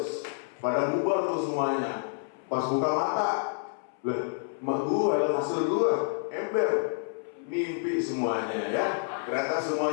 Pada bubar tuh semuanya. Pas buka mata, lah, emak gue, hasil gue, ember. Mimpi semuanya ya. Ternyata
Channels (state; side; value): silent; right; 59 dB below the other